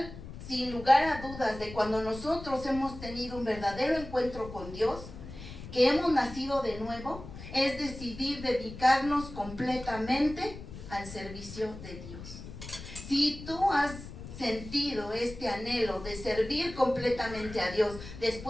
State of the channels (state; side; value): noise; left; rumble, 12 dB below the sound